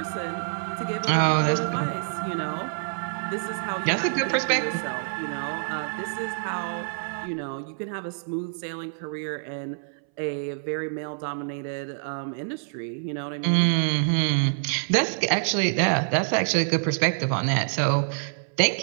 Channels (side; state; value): left; silent; 61 dB below the other